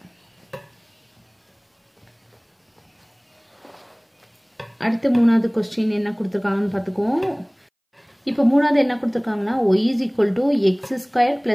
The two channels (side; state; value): both; identical; correlation 1.00